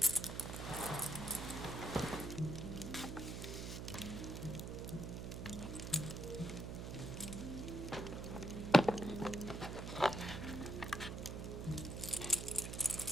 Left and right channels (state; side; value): noise; right; hum, 5 dB below the sound